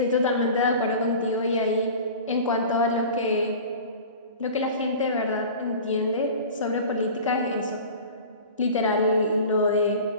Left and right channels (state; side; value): inverted; both; correlation -0.38